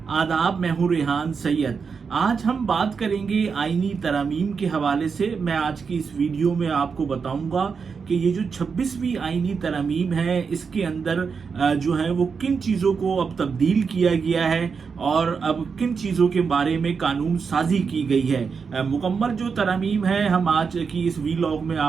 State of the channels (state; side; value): quieter; left; 5.6 dB